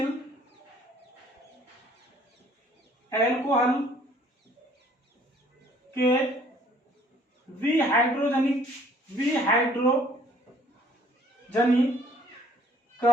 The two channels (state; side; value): normal; both; correlation 0.59